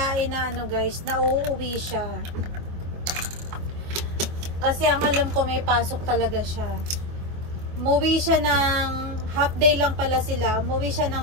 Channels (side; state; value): left; late; 24 ms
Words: na guys, na uuwi siya. Kasi ang alam ko, may pasok talaga siya. Umuwi siya ng, half day lang pala sila. Umuwi siya